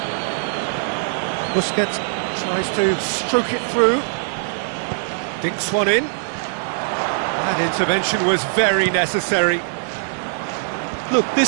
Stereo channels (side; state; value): left; silent; 65 dB below the other